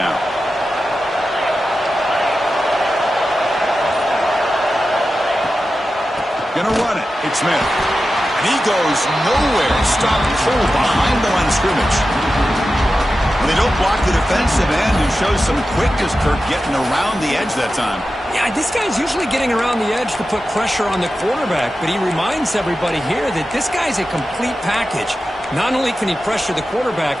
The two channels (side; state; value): both; normal; correlation 0.92